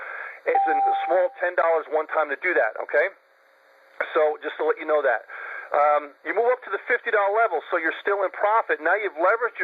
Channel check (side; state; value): both; identical; correlation 1.00